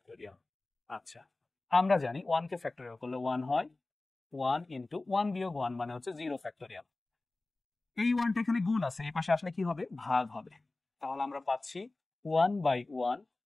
আচ্ছা, আমরা জানি 1 কে ফ্যাক্টোরিয়াল করলে 1 হয়, 1 ইন্টু 1 বিয়োগ 1 মানে হচ্ছে 0 ফ্যাক্টোরিয়াল। এই 1টা এখানে গুণ আছে, এই পাশে আসলে কি হবে, ভাগ হবে। তাহলে আমরা পাচ্ছি 1 বাই 1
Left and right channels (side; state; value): right; quieter; 3.1 dB